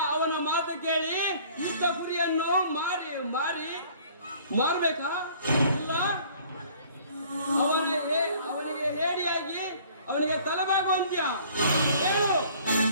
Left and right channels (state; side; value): inverted; both; correlation -0.54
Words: ಅವನ ಮಾತು ಕೇಳಿ ಇದ್ದ ಗುರಿಯನ್ನು ಮಾರ್ಬೇಕಾ? ಇಲ್ಲ ಅವನಿಗೆ ಹೇಡಿಯಾಗಿ ಅವನಿಗೆ ತಲೆಬಾಗುವಂತ್ಯ ಹೇಳು.